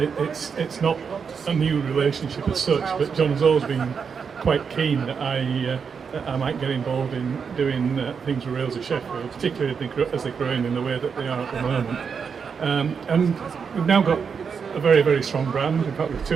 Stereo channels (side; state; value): left; quieter; 6.2 dB